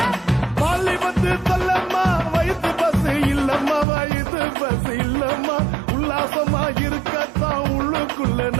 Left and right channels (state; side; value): drops out; left; at 3.9 s